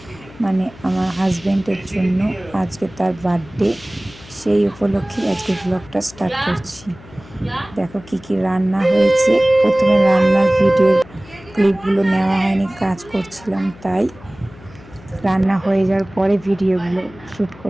মানে আমার হাজব্যান্ডের জন্য। আজকে তার বার্থডে, সেই উপলক্ষে আজকে ব্লগটা স্টার্ট করছি। দেখো কি কি রান্না হয়েছে। প্রথমে রান্নার ভিডিওর ক্লিপগুলো নেওয়া হয়নি, কাজ করছিলাম তাই। রান্না হয়ে যাওয়ার পরে ভিডিওগুলো শ্যুট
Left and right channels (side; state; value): left; noise; hum, 21 dB below the sound